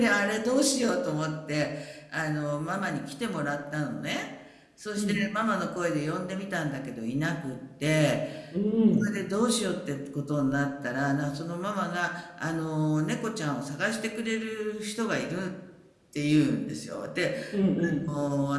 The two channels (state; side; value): identical; both; correlation 1.00